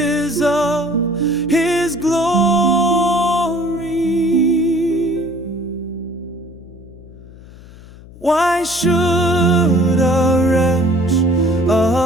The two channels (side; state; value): left; noise; hum, 20 dB below the sound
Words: of His glory. Why should a wretch